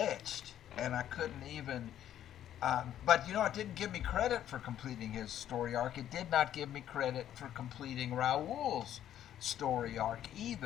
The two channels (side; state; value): right; quieter; 11.1 dB